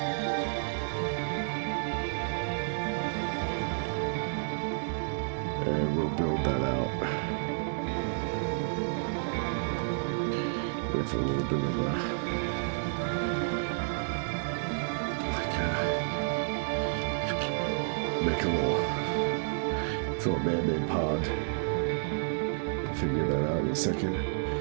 And we'll build that out with a little bit of a, make a little man-made pond. We'll figure that out in a second.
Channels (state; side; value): silent; left; digital silence